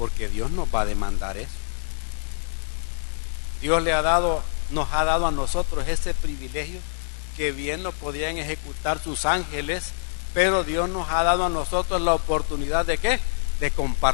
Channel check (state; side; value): silent; right; digital silence